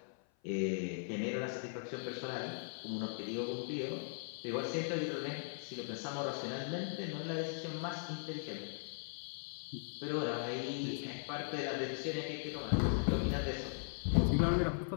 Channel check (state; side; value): silent; right; 52 dB below the other